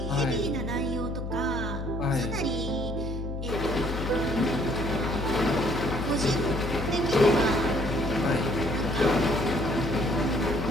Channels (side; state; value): left; noise; hum, 5 dB below the sound